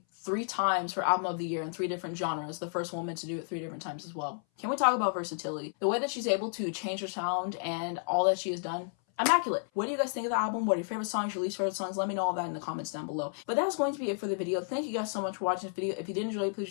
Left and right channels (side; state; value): right; silent; 57 dB below the other